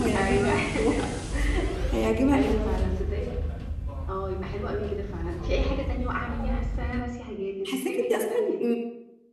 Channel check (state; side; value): identical; both; correlation 1.00